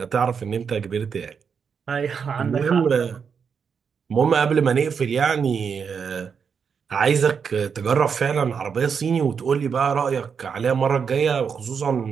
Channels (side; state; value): left; quieter; 6.4 dB